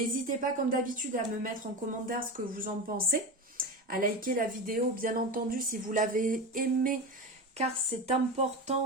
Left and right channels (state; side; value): normal; both; correlation 0.23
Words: pas comme d'habitude à me mettre en commentaire ce que vous en pensez, à liker la vidéo bien entendu si vous l'avez aimée, car c'est